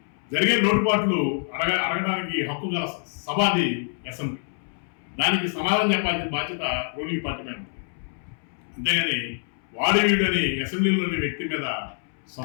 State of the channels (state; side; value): silent; right; 61 dB below the other